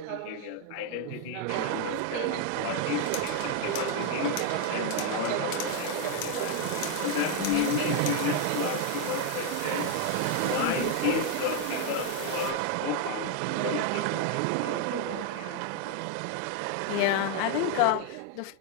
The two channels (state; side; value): different; both; correlation 0.01